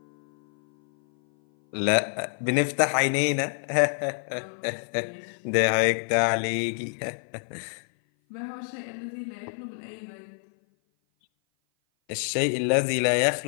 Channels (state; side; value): silent; right; 57 dB below the other